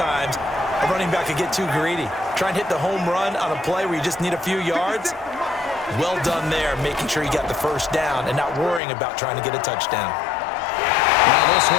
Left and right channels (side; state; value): right; drops out; at 8.8 s